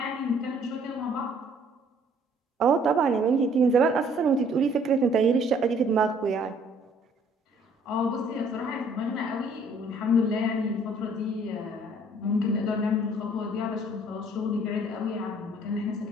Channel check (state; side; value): normal; both; correlation 0.59